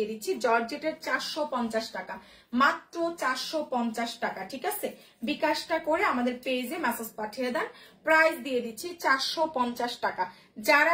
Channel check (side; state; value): both; identical; correlation 1.00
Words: দিচ্ছি জর্জেটের 450 টাকা, মাত্র 450 টাকা, ঠিক আছে। বিকাশটা করে আমাদের পেজে মেসেজ পাঠিয়ে দেন। প্রাইস দিয়ে দিচ্ছি 450 টাকা।